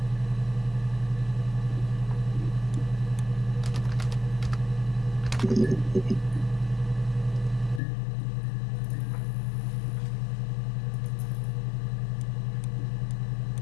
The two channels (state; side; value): drops out; right; at 7.8 s